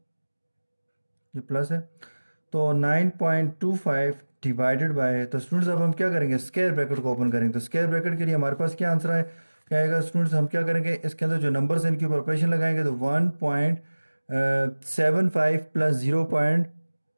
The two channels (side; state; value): both; inverted; correlation -1.00